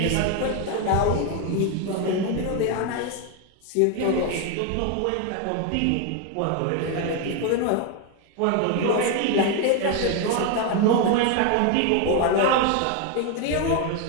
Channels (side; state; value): both; different; correlation 0.01